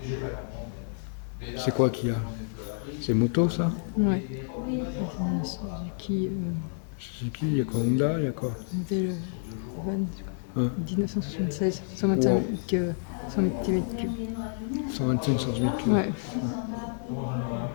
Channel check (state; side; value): silent; right; 59 dB below the other